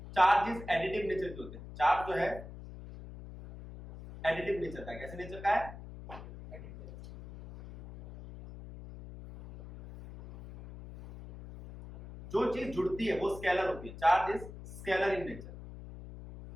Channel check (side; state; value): left; noise; hum, 13 dB below the sound